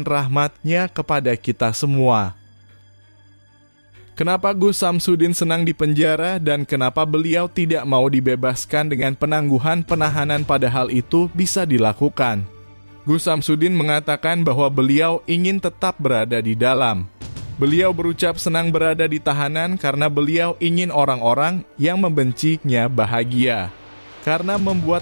kepada kita semua. Kenapa Gus Samsudin senang dipenjara dan kenapa beliau tidak mau dibebaskan dengan penangguhan penahanan padahal itu bisa dilakukan? Gus Samsudin mengatakan bahwa beliau ingin tetap berada di dalam. Beliau berucap senang berada di tahanan karena beliau ingin orang-orang yang membencinya bahagia. Karena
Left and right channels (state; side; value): inverted; both; correlation -1.00